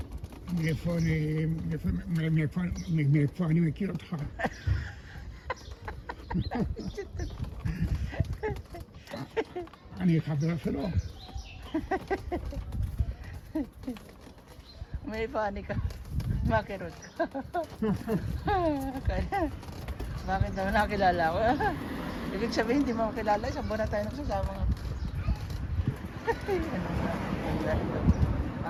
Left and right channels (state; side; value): identical; both; correlation 1.00